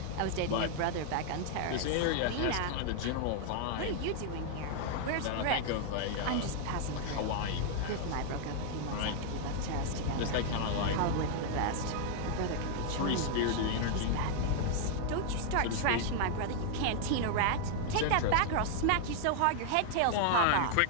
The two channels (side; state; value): both; different; correlation 0.00